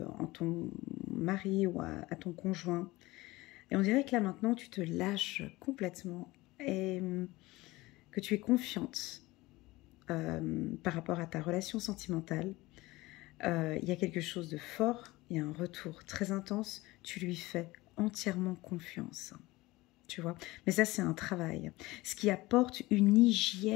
en ton mari ou à ton conjoint. Et on dirait que là maintenant, tu te lâches complètement et que tu es confiante par rapport à ta relation sentimentale. Il y a quelque chose de fort, il y a un retour très intense, tu lui fais entièrement confiance. Tu vois, mais ça c'est un travail, ce qui apporte une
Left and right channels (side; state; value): right; quieter; 20.1 dB